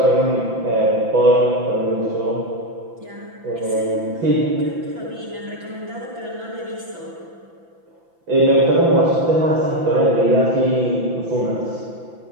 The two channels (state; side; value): late; left; 6.0 ms